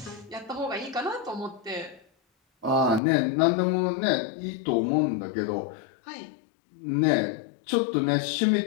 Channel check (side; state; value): right; drops out; at 3.0 s